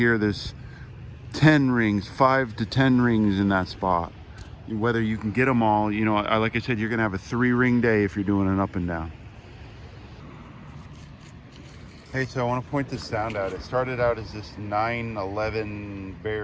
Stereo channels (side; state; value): both; identical; correlation 1.00